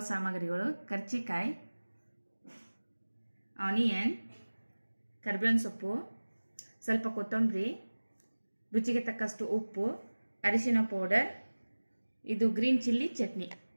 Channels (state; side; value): inverted; both; correlation -1.00